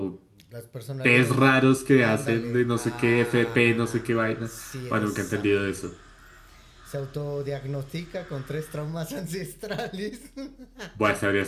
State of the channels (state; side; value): identical; both; correlation 1.00